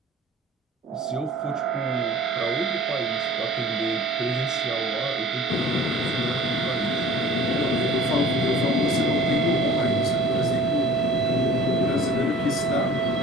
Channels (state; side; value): normal; both; correlation 0.46